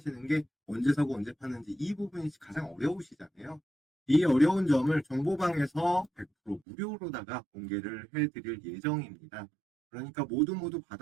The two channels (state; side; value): drops out; left; at 6.6 s